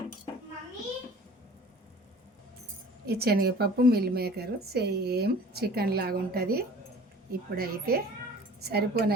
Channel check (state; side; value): normal; both; correlation 0.46